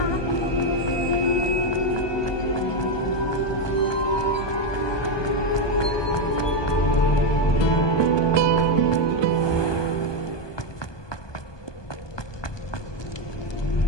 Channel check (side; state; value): right; late; 1.2 ms